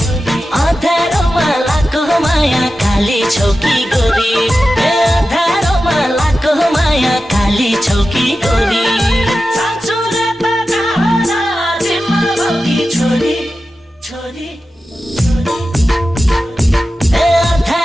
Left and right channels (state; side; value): normal; both; correlation 0.93